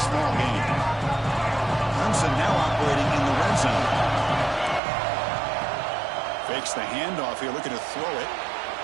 gain. Clemson now operating in the red zone. Fakes the handoff here, looking to throw it.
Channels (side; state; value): left; drops out; at 4.8 s